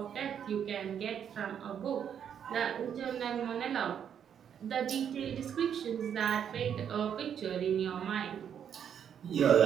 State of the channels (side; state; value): left; quieter; 8.5 dB